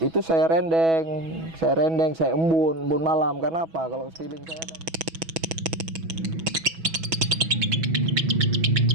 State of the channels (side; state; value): left; late; 6.1 ms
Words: itu saya rendeng, saya embun malam. Karena apa? Kalau stiling saya